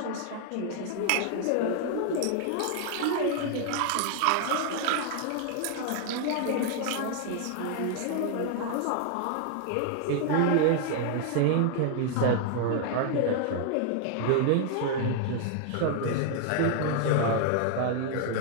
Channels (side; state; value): both; different; correlation 0.00